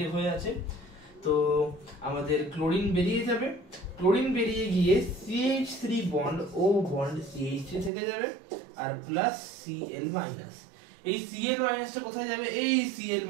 হয়ে আছে। তো আমাদের ক্লোরিন বেরিয়ে যাবে, ক্লোরিন বেরিয়ে গিয়ে CH3 বন্ড ও বন্ড CH3 থেকে যাবে, আর প্লাস Cl মাইনাস। এই Cl মাইনাসটা কোথায় যাবে? এই Cl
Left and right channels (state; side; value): drops out; left; at 7.9 s